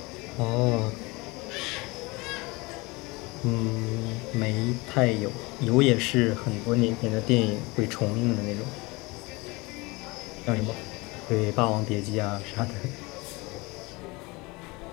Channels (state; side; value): quieter; right; 24.7 dB